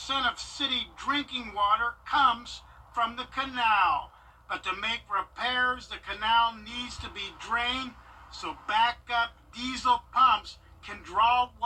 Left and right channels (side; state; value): both; identical; correlation 1.00